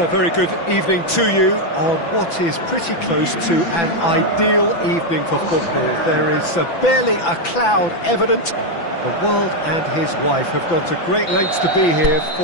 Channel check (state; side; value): late; right; 5.9 ms